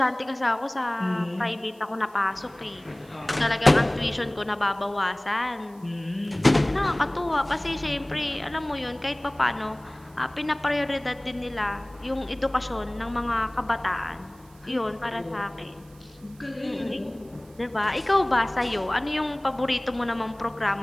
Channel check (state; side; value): noise; right; hiss, 28 dB below the sound